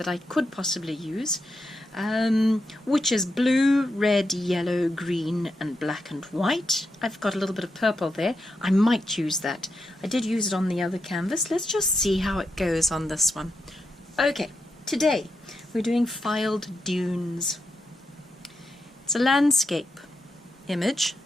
I could possibly use, which is blue, red, yellow, green and black and white. I've got a little bit of purple there. I might use that. I did use it on the other canvas. Let's just see how it goes on this one. Okay, today we're doing Fylde Dunes. It's a landscape image,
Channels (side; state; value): both; normal; correlation 0.85